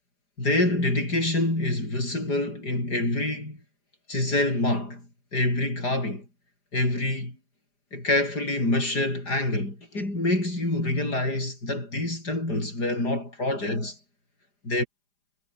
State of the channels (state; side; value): late; right; 4.9 ms